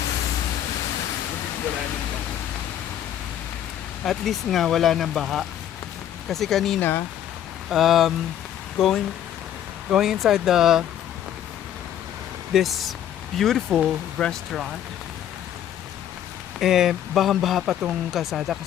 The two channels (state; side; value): quieter; right; 10.7 dB